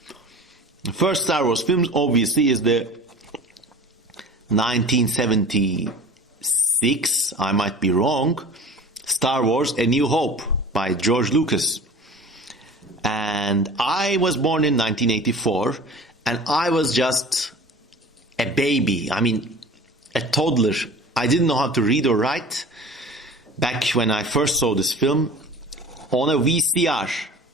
The first Star Wars film obviously is the 1976, I might be wrong, Star Wars A New Hope by George Lucas. And I was born in 1984, and I was just a baby. I mean, a toddler. I didn't know how to read or write back when I first saw this film on a VCR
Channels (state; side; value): normal; both; correlation 0.40